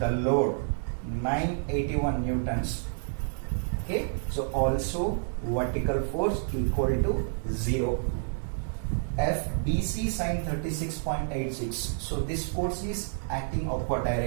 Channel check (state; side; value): silent; left; 58 dB below the other